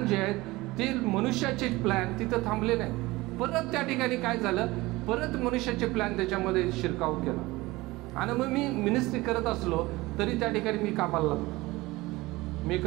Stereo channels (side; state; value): left; quieter; 20.5 dB